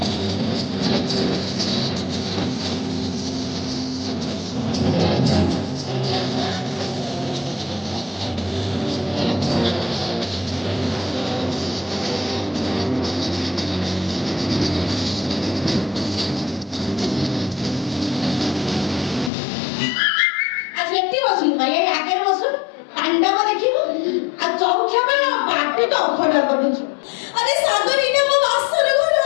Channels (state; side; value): drops out; right; at 19.3 s